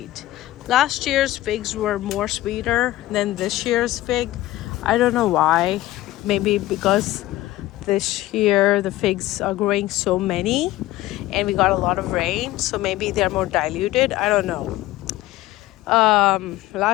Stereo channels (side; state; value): right; quieter; 16.4 dB